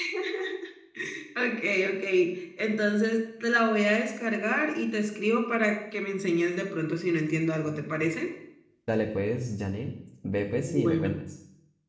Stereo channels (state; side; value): identical; both; correlation 1.00